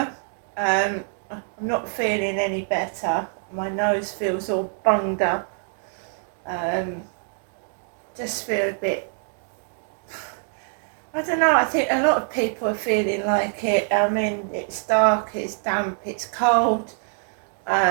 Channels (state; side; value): silent; left; 57 dB below the other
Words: I'm not feeling any better. My nose feels all bunged up. Just feel a bit, I don't know, I think a lot of people are feeling like it. I mean, it's dark, it's damp, it's cold.